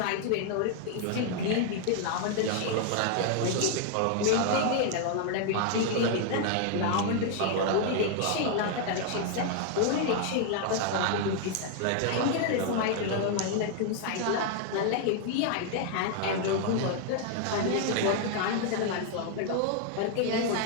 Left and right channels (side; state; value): both; different; correlation 0.00